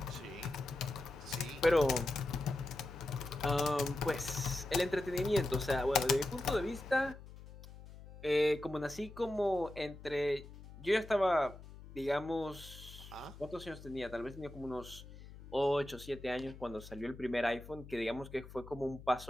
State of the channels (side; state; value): left; noise; hum, 16 dB below the sound